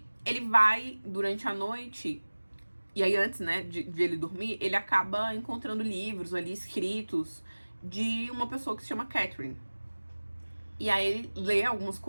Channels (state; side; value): inverted; both; correlation -1.00